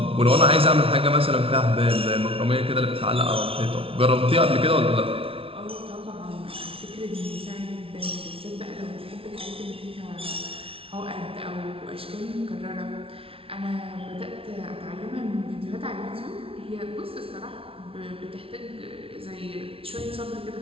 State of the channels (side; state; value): left; late; 0.26 ms